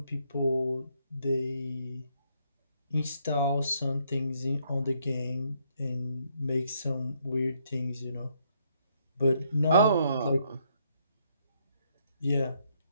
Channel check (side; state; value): both; inverted; correlation -0.72